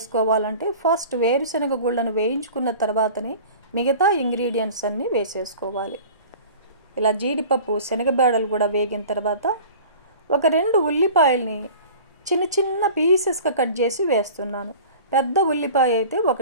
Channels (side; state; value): both; inverted; correlation -0.41